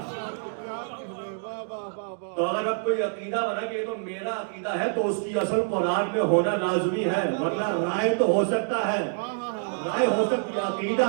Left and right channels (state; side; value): silent; left; digital silence